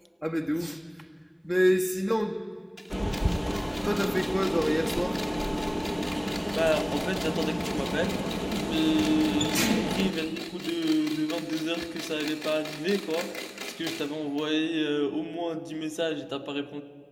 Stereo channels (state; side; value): identical; both; correlation 1.00